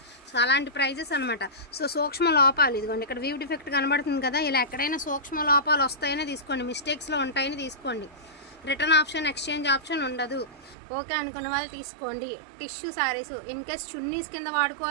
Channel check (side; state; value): left; drops out; at 10.8 s